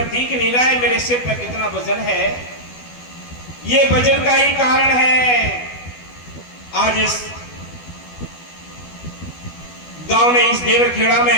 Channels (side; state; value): right; late; 12 ms